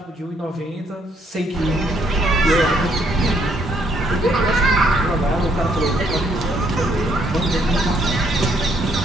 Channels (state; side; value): normal; both; correlation 0.70